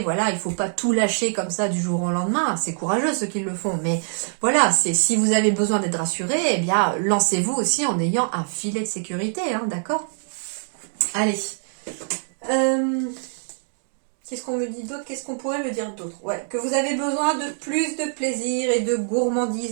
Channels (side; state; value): left; silent; 63 dB below the other